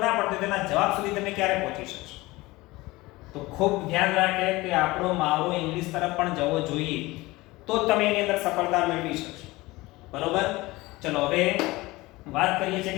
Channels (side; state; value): right; quieter; 20.6 dB